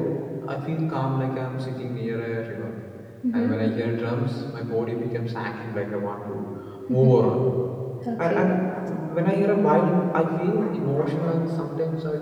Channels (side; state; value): both; identical; correlation 1.00